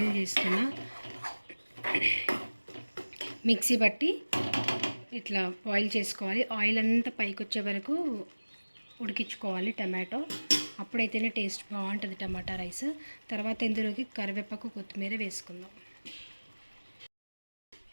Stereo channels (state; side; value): inverted; both; correlation -1.00